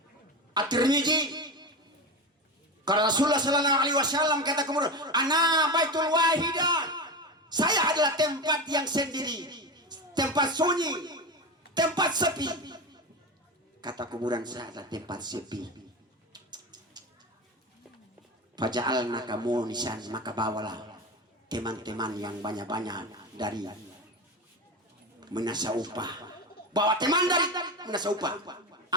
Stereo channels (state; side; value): normal; both; correlation 0.22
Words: At-Tirmidzi. Karena Rasulullah Sallallahu Alaihi Wasallam kata kubur, ana baitul wahidah, saya adalah tempat yang sendiri, tempat sunyi, tempat sepi. Kata kuburan, saya adalah tempat sepi. Faja'alna kamu nisan, maka bawalah teman-teman yang banyak-banyak dari menasa upah. Bawa teman dari menasa upah.